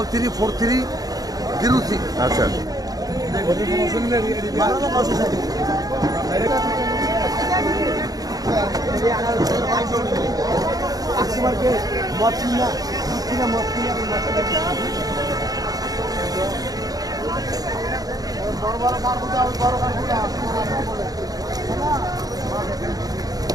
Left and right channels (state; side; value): late; left; 0.18 ms